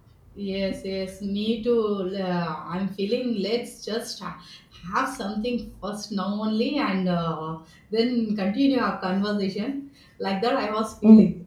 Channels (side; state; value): both; identical; correlation 1.00